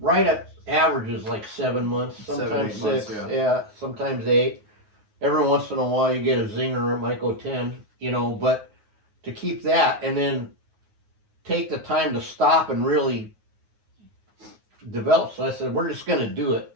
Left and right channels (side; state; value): left; late; 9.4 ms